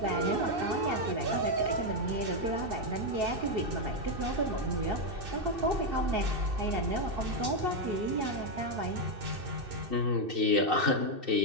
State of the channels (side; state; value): left; late; 2.6 ms